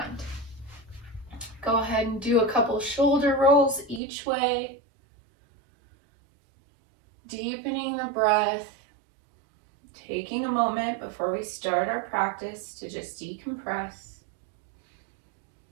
Go ahead and do a couple shoulder rolls each way. Deepening the breath. Taking a moment before we start our practice to just decompress.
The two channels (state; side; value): drops out; left; at 4.0 s